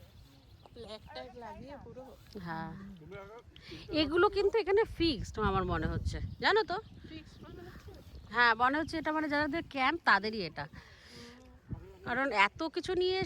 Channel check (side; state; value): both; identical; correlation 1.00